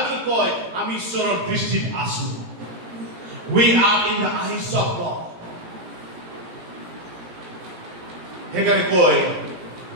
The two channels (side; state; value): left; late; 17 ms